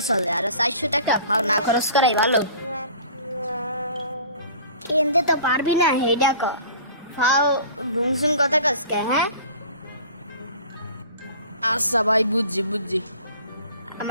চলে, আর 400 টাকা ফাও না খরচ করাই ভালো। কিনতে তো পারবি না হে টাকা, ফাও ভুংসুং কথা কসকে। হ্যাঁ আচ্ছা ভাই, বুঝছি বুঝছি।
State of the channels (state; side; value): inverted; both; correlation -0.45